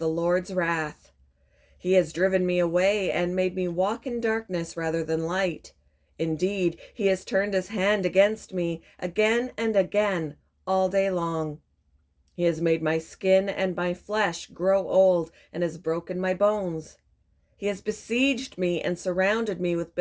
Lord's wrath. He has driven me away and made me walk in darkness rather than light. Indeed, he has turned his hand against me again and again all day long. He has made my skin and my flesh grow old and has broken my bones. He has besieged me and surrounded me with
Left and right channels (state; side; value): identical; both; correlation 1.00